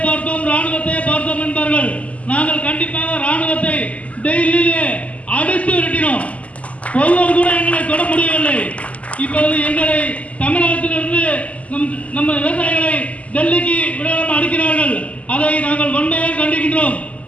பார்த்தோம் என்பார்கள். நாங்கள் கண்டிப்பாக ராணுவத்தை டெல்லியிலே அடித்து விரட்டினோம். ஒருவர் கூட எங்களை தொட முடியவில்லை. இப்பொழுது எங்களை தமிழகத்திலிருந்து நம்ம விவசாயிகளை டெல்லிக்கு விடாமல் அடிக்கிறார்கள். அதை நாங்கள் வன்மையாக கண்டிக்கின்றோம்.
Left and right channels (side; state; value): right; late; 0.068 ms